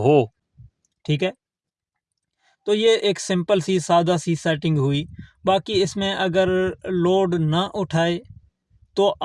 ठीक है? तो ये एक सिंपल सी सादा सी सेटिंग हुई। बाकी इसमें अगर लोड ना उठाए तो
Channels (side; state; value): both; identical; correlation 1.00